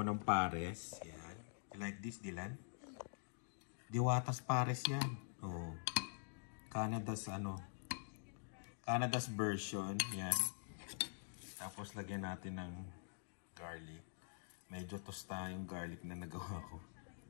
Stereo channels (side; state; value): right; silent; digital silence